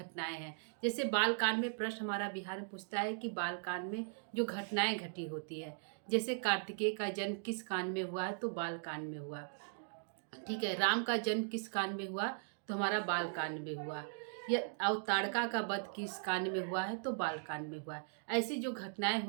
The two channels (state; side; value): silent; left; digital silence